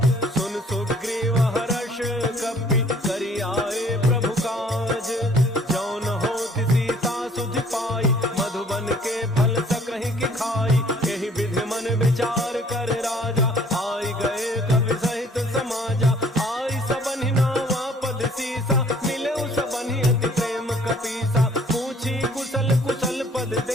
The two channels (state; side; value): normal; both; correlation 0.57